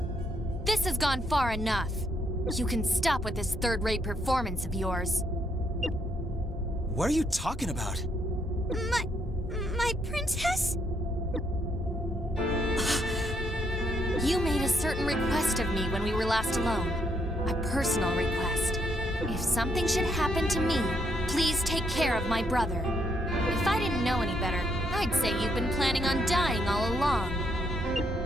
This has gone far enough. You can stop with this third-rate performance of yours. What are you talking about? My princess? You made a certain request of me when we were last alone. A personal request. If something should happen to me, please take care of my brother. If I didn't know any better, I'd say you've been planning on dying all along.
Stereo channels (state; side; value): normal; both; correlation 0.74